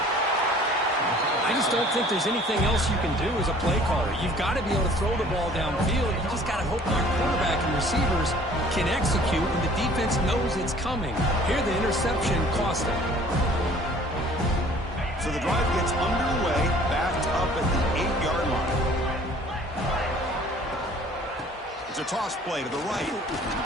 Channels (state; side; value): normal; both; correlation 0.52